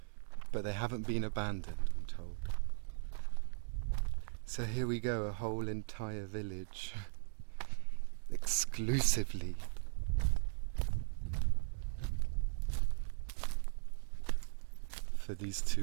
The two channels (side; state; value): left; silent; digital silence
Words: But they haven't been abandoned, I'm told. So here we go, a whole entire village, exclusively for these